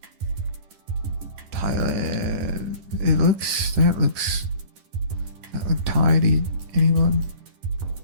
Thailand. It looks. That looks. That look Thai to anyone?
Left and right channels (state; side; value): late; left; 10 ms